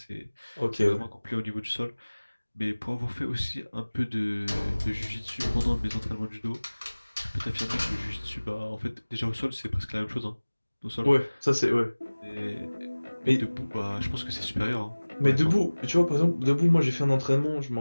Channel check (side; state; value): both; inverted; correlation -1.00